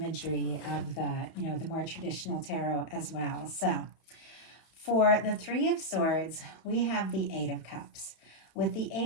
of the more traditional tarot as well. So for the Three of Swords, we have the Eight of Cups. With the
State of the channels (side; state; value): right; late; 31 ms